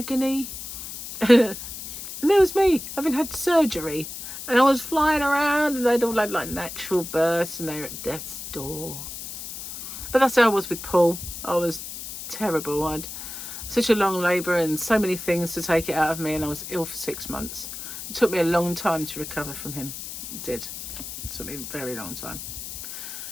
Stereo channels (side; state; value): left; noise; hiss, 9 dB below the sound